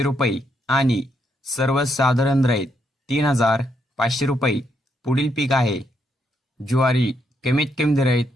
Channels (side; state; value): both; normal; correlation 0.77